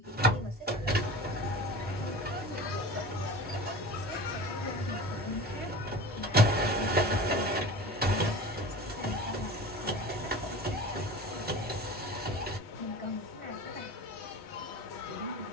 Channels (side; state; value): both; normal; correlation 0.35